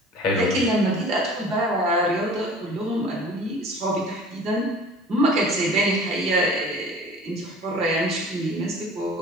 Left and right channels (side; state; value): both; normal; correlation 0.44